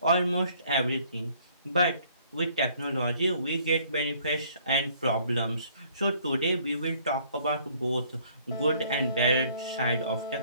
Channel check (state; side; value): inverted; both; correlation -0.60